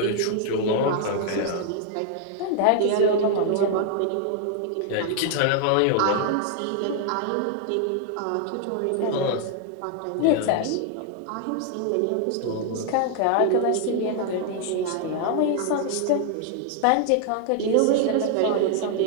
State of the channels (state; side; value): different; both; correlation 0.00